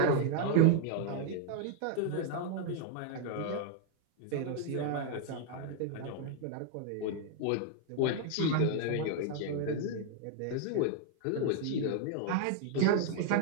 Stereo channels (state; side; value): different; both; correlation 0.00